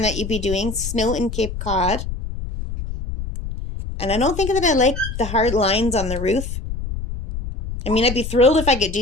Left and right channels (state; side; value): noise; left; rumble, 7 dB below the sound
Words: that you'd be doing. Snow in Cape Cod. And I don't think that I like the hard lines on the roof. I mean, I'd be thrilled if I could